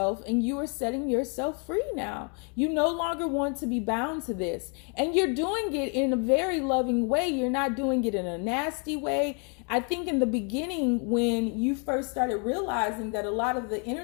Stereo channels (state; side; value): quieter; right; 37.9 dB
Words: and you are setting yourself free now. You no longer want to be bound to this, and you're doing it in a very loving way. You're not doing it in a nasty way. I think in the beginning, when you first started realizing that a lot of the